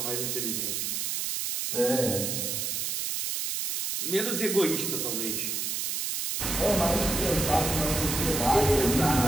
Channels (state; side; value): noise; right; hiss, 1 dB below the sound